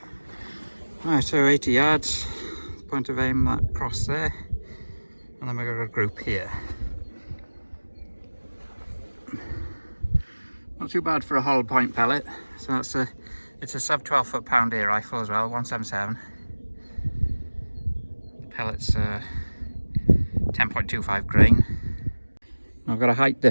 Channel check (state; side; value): inverted; both; correlation -1.00